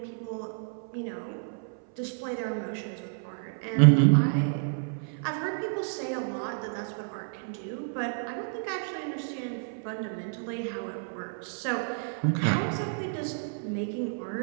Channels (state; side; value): silent; left; 58 dB below the other